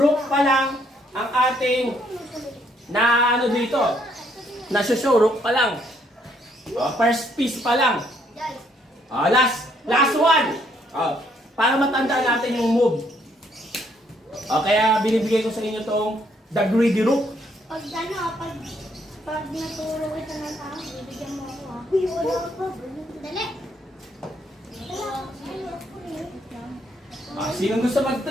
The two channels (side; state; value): both; normal; correlation 0.69